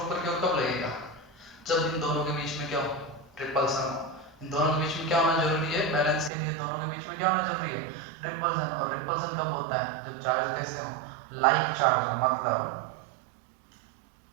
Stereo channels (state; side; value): drops out; left; at 6.3 s